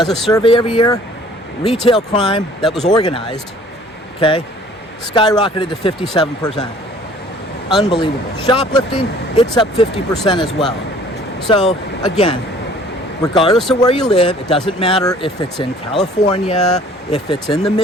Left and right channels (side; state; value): both; normal; correlation 0.53